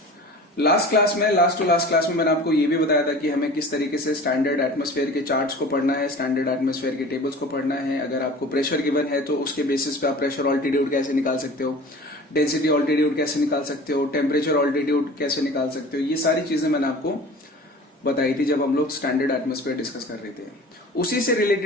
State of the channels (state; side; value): normal; both; correlation 0.41